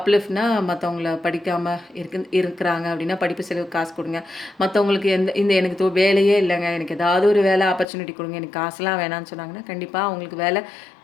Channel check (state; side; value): drops out; right; at 7.9 s